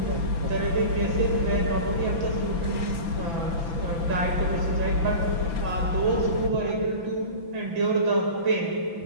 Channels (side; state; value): left; late; 6.0 ms